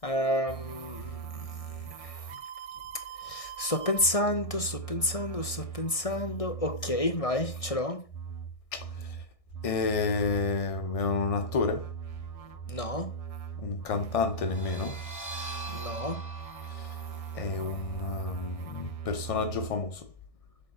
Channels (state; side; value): late; right; 1.6 ms